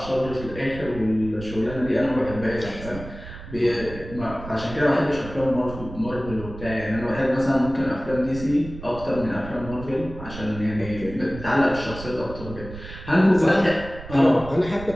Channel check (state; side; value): noise; right; rumble, 13 dB below the sound